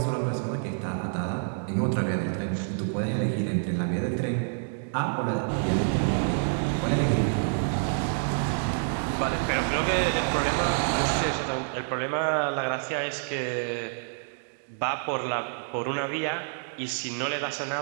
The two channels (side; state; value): left; silent; digital silence